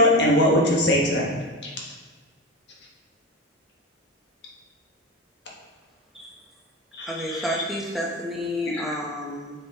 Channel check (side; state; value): both; normal; correlation 0.23